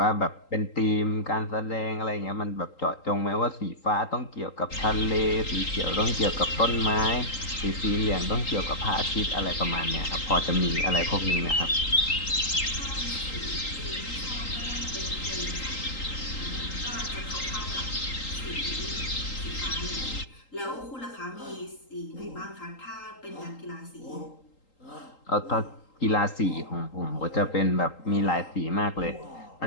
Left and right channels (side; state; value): right; late; 3.8 ms